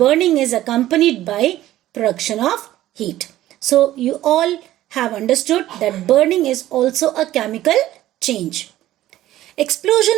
is accompanied by production of heat. So you all have understood that burning is also a chemical change.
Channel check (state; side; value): quieter; left; 14.3 dB